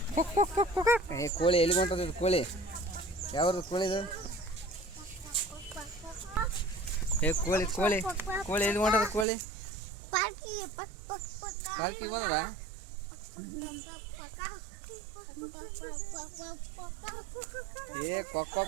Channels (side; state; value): left; drops out; at 9.2 s